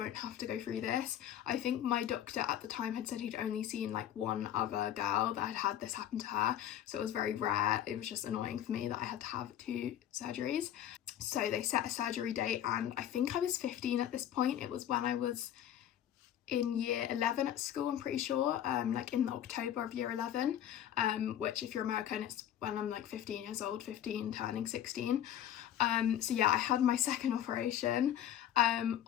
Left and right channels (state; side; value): quieter; right; 11.0 dB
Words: have to go through this. I think my doctor at the time had said he'd only seen like one other girl that had had this happen to her, so it was very rare. It was just annoying for me that I had to have 2 surgeries. So they set a surgery date, and I think I was 15 at this point. It was when I was in year 11 at school, I'm pretty sure, like in October of year 11, which if you're American, it's when I'm like 15 years old, 15 turning 16. So yeah, I had my second operation.